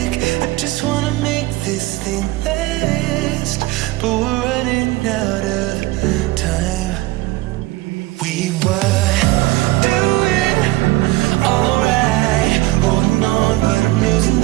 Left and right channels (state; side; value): quieter; left; 19.1 dB